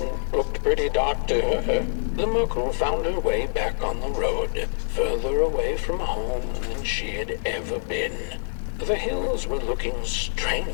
looked pretty dark to her. The Merkel found her way back on the road, further away from home than she had ever been. The hills were looking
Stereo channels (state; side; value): silent; right; 60 dB below the other